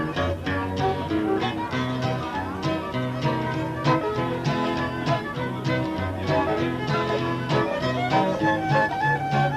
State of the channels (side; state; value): both; identical; correlation 1.00